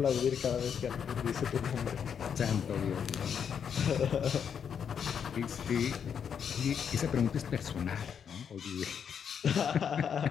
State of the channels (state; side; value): quieter; right; 7.6 dB